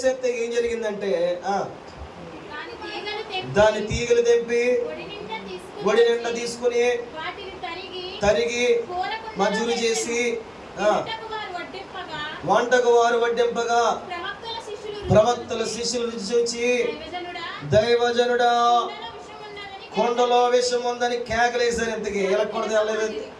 ఏం జరిగిందంటే దాని తీగలు తెంపి ఒడి నిండా తీసుకుని తరిగి మజూరు చేసి వంటకు వారు వడ్డింపగా ప్రవక్తల శిష్యులు రుచి చూచి, దైవజనుడా కొండలో విషం ఉందని కేకలేశారు. ఇంతకీ ఎలకూడదు, తెల్లలేదు,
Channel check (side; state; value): both; identical; correlation 1.00